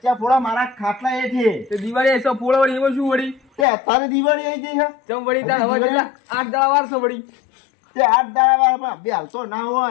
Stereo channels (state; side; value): drops out; right; at 3.7 s